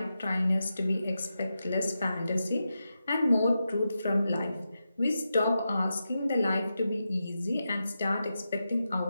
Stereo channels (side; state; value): both; inverted; correlation -0.89